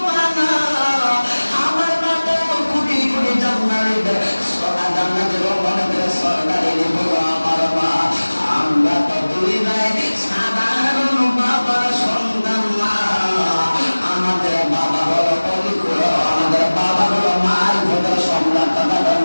মা না, আমার মা তো কোটি কোটি জান্নাতের সরদারি হলো আমার মা। আমরা তো দুই ভাই সাধারণ বাবার সন্তান না, আমাদের বাবা হলো পবিত্র, আমাদের বাবা হলো মার ভোটের সম্রাট। তখন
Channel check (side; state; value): both; inverted; correlation -1.00